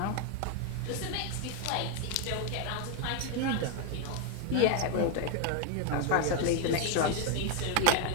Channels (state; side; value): different; both; correlation 0.01